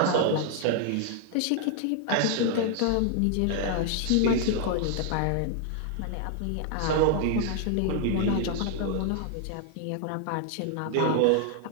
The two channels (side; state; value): both; different; correlation 0.00